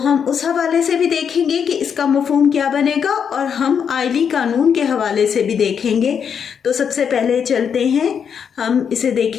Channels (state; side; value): quieter; right; 7.3 dB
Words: ہم اس حوالے سے بھی دیکھیں گے کہ اس کا مفہوم کیا بنے گا، اور ہم آئلی قانون کے حوالے سے بھی دیکھیں گے. تو سب سے پہلے چلتے ہیں، ہم اسے